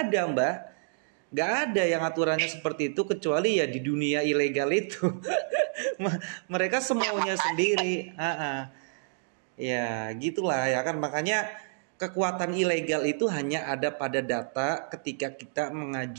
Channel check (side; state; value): left; silent; digital silence